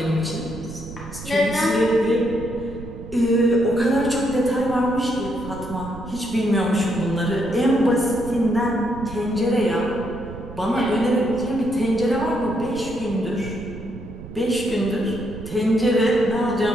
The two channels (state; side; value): noise; right; rumble, 13 dB below the sound